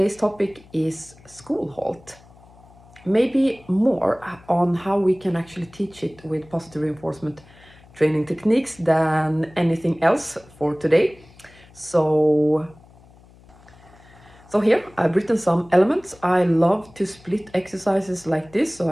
topic is school halt. Maybe more on how we can actually teach it with positive reinforcement training techniques than anything else for today. So here I've written some elements. I love to split exercises like this so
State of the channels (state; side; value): noise; left; hum, 25 dB below the sound